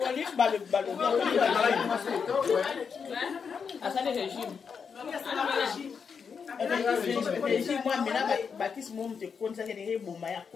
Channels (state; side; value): quieter; right; 6.2 dB